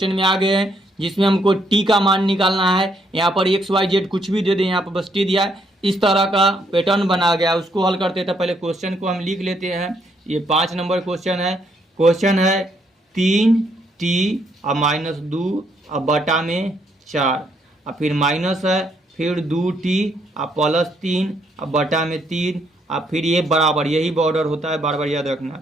में आ गए हैं, जिसमें हमको t का मान निकालना है। यहाँ पर XYZ कुछ भी दे दें, यहाँ पर बस t दिया है। इस तरह का पैटर्न बना गया, उसको हल करते थे। पहले क्वेश्चन को हम लिख लेते हैं। ये 5 नंबर क्वेश्चन है। क्वेश्चन है 3t और -2 और बटा में 4 और फिर माइनस है, फिर 2t और +3 और बटा में 3 और फिर ये बराबर, यही बॉर्डर होता है, बार बार याद रखना।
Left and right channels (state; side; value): normal; both; correlation 0.72